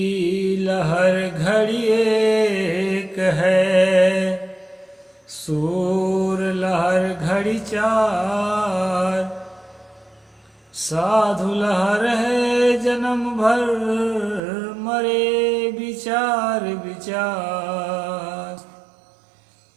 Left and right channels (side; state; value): left; drops out; at 14.4 s